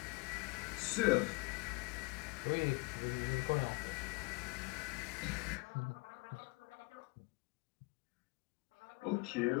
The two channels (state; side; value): quieter; right; 26.7 dB